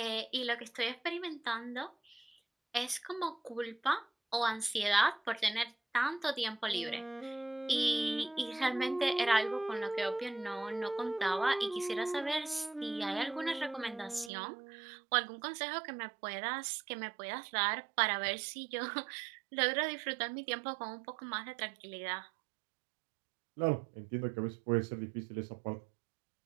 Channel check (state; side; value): drops out; left; at 14.3 s